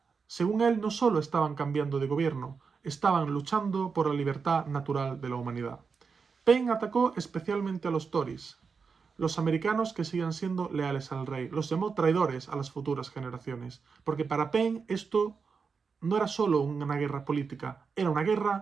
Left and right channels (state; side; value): quieter; left; 5.4 dB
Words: Según él, no solo estaban cambiando de gobierno, estaban luchando por la libertad natural de la humanidad. Paine atacó especialmente a los Tories, los americanos que sigan siendo leales al rey. Los llamó traidores a las futuras generaciones, porque para Paine esto no era solo una guerra política, era una